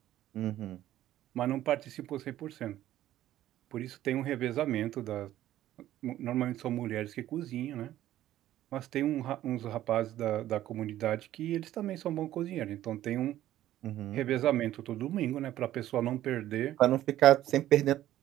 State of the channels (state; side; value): quieter; left; 13.4 dB